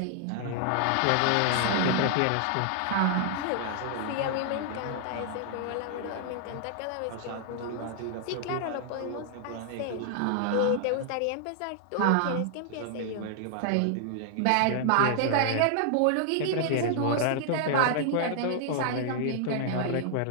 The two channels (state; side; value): different; both; correlation 0.00